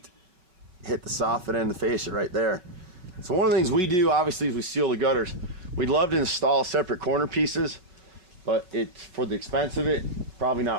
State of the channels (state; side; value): late; left; 5.4 ms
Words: hit the soffit and the fascia right there. So one of the things we do, obviously, is we seal the gutters. We'd love to install separate corner pieces, but it's for the expense of it, probably